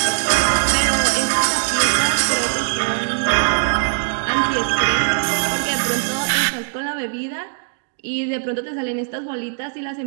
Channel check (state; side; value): silent; left; digital silence